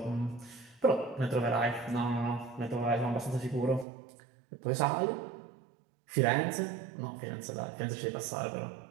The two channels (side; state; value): left; drops out; at 3.9 s